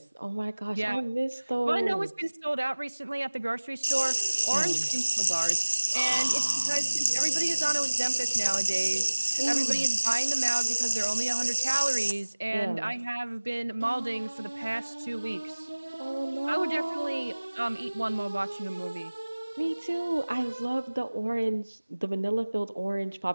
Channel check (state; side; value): inverted; both; correlation -1.00